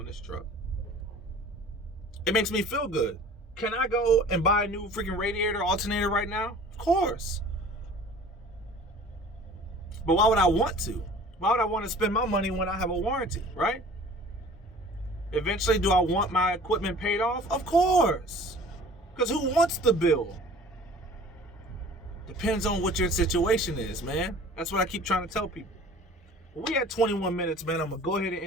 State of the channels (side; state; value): both; normal; correlation 0.46